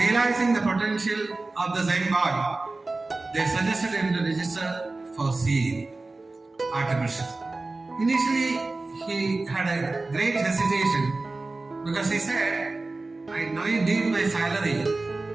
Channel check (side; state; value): left; quieter; 3.3 dB